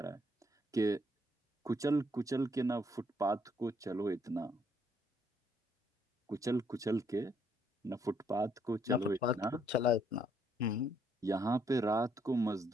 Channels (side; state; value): both; normal; correlation 0.70